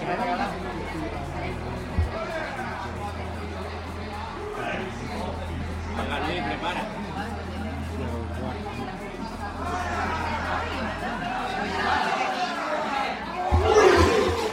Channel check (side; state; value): both; identical; correlation 1.00